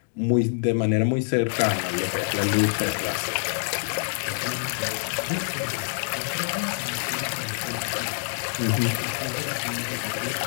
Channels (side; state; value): right; silent; digital silence